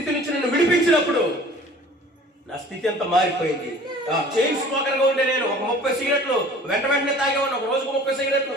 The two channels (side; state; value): both; normal; correlation 0.47